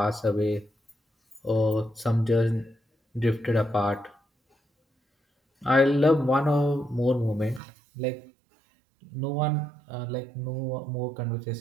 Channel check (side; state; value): left; drops out; at 7.6 s